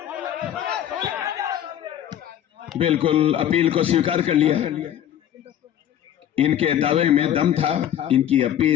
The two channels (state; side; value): quieter; right; 10.7 dB